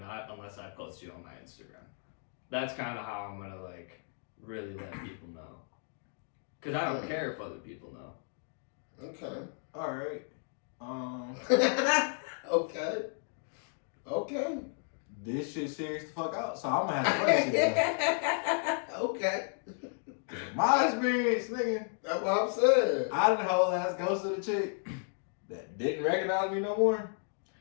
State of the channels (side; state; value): right; silent; 56 dB below the other